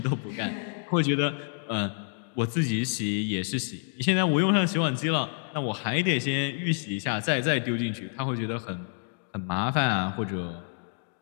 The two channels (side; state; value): right; silent; 59 dB below the other